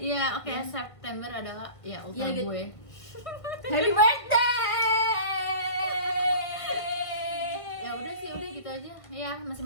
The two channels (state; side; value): late; right; 1.5 ms